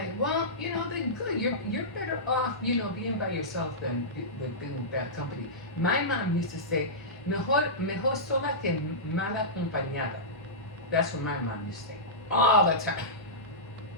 well, they're good. You're better off, being by yourself than with being with bad company. My mom used to say, mejor sola que mal acompañada. That's what my mom used to say all the time.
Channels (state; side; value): normal; both; correlation -0.16